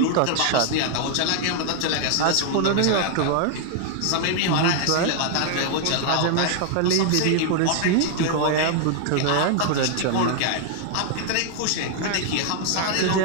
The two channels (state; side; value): different; both; correlation 0.00